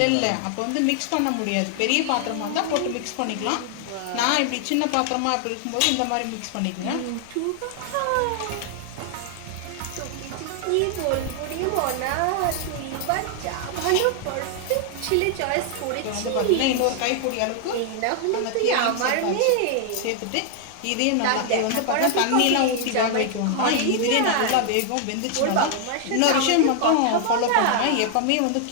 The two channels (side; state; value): both; different; correlation 0.00